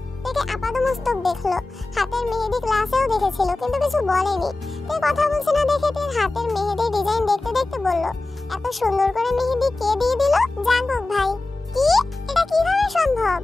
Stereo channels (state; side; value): quieter; right; 3.0 dB